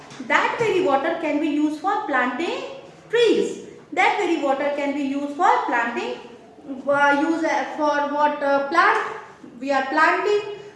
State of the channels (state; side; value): identical; both; correlation 1.00